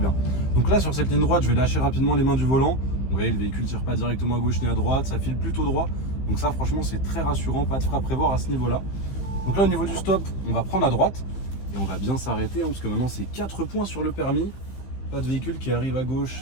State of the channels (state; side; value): late; right; 15 ms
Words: Donc là, sur cette ligne droite, je vais lâcher rapidement les mains du volant. Vous voyez, le véhicule ne tire pas directement à gauche ni à droite. Ça file plutôt droit. Donc ça, franchement, c'est très rassurant. Pas de frein à prévoir à ce niveau-là. Donc là, au niveau du stop, on va prendre à droite. Et on va bien s'arrêter, hein, parce que maintenant, c'est 4 points sur le permis. Pas de véhicule qui arrive à gauche.